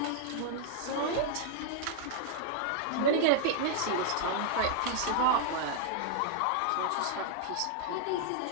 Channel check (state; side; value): different; both; correlation -0.01